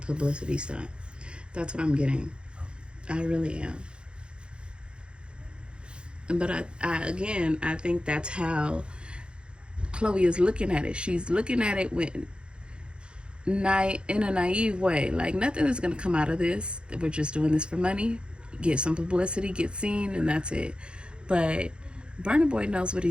stunt. That's what I'm getting. I really am. But I think that's how Chloe is looking at it. She's looking at it in a naive way. Like, nothing is going to come out of this. We're just doing this for money, get some publicity, get seen, and that's it. But Burna Boy knows what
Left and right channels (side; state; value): left; late; 0.054 ms